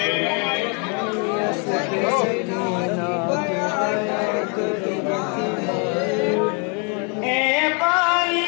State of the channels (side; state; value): right; quieter; 36.7 dB